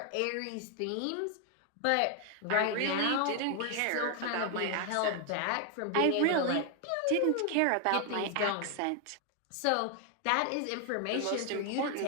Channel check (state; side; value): different; both; correlation 0.00